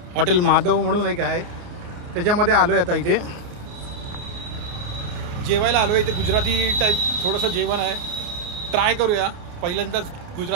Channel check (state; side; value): late; left; 29 ms